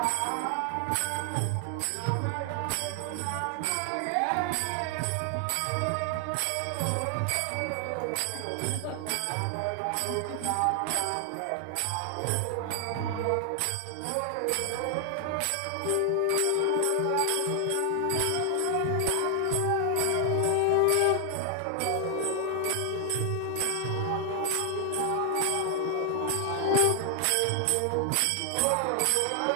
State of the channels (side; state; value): both; different; correlation 0.00